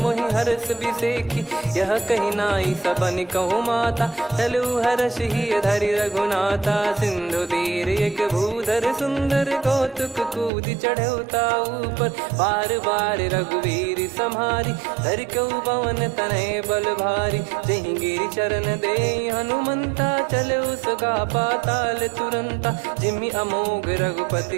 मोहि हरस बिसेखी यह कही नाई सबन कहु माता चलु हरष ही धरि रघुनाथा सिंधु तीर एक भूधर सुंदर कौतुक कूद चढ़ौता ऊपर बार बार रघुवीर सम्हारी धरि कौ पवन तनय बल भारी जहि गिरि चरण दे हनुमंता चले उसका पाताल तुरंता जिमि अमोघ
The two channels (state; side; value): drops out; left; at 10.5 s